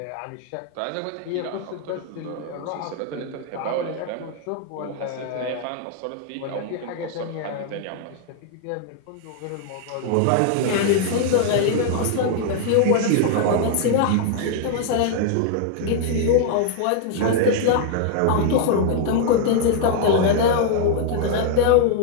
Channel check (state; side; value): different; both; correlation 0.00